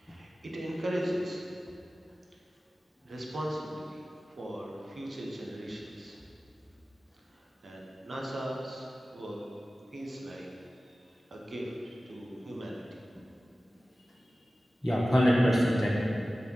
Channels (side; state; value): both; normal; correlation 0.96